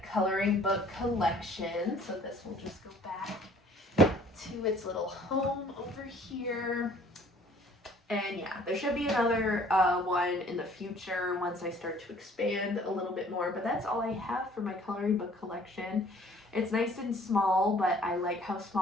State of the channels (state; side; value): normal; both; correlation 0.55